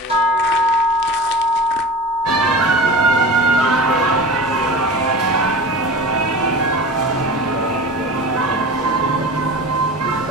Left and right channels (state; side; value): normal; both; correlation 0.34